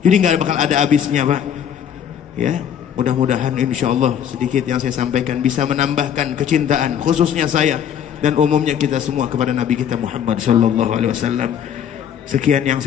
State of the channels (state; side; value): quieter; right; 8.9 dB